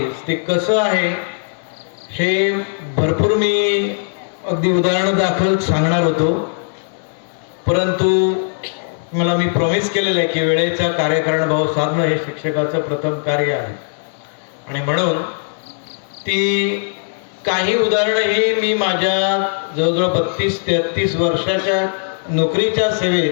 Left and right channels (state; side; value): silent; right; 64 dB below the other